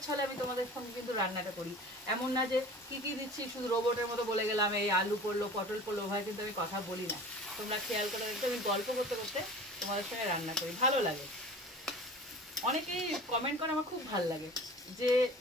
ছলে আমি তোমাদের সঙ্গে কিন্তু রান্নাটা করি, এমন না যে কি কি দিচ্ছি শুধু রোবটের মতো বলে গেলাম, এই আলু পড়লো পটল পড়লো, ভাই কিন্তু আমি কথা বলি না। তোমরা খেয়াল করে দেখতে, আমি গল্প করতে করতে তোমাদের সঙ্গে রান্না করি, ভালো লাগে। অনেকেই কমেন্ট করে, আমার খুব ভালো লাগে। যে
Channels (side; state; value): both; normal; correlation 0.40